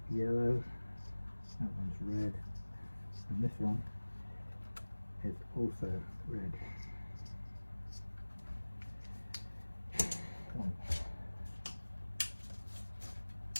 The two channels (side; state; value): both; inverted; correlation -1.00